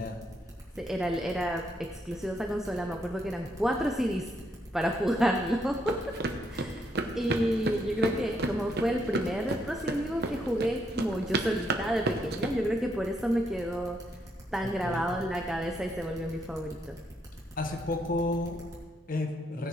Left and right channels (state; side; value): normal; both; correlation 0.75